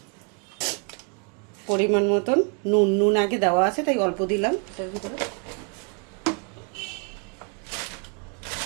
পরিমাণ মতন নুন আগে দেওয়া আছে তাই অল্প দিলাম এটার ভিতরে।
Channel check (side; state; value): left; quieter; 35.9 dB